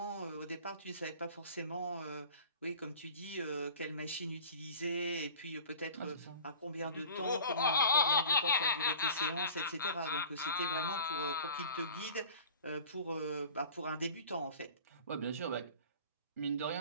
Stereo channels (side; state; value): both; inverted; correlation -0.43